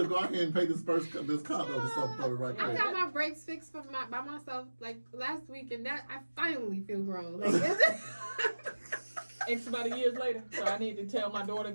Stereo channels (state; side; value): inverted; both; correlation -1.00